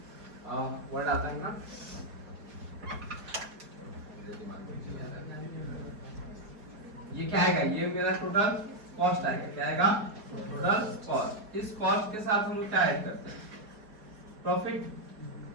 वर्ड आता है ना, मेरे दिमाग में नहीं आ रहा है। ये क्या आएगा? ये मेरा टोटल कॉस्ट आएगा। क्या आएगा? Total cost. इस कॉस्ट के साथ हम लोग क्या ऐड करते हैं? प्रॉफिट।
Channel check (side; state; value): left; late; 4.8 ms